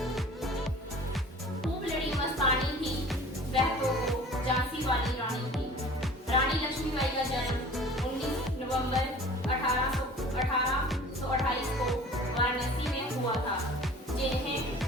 खूब लड़ी मस्तानी थी वह तो झांसी वाली रानी थी। रानी लक्ष्मीबाई का जन्म 19 नवंबर 1828 को वाराणसी में हुआ था, जिन्हें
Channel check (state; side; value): normal; both; correlation 0.44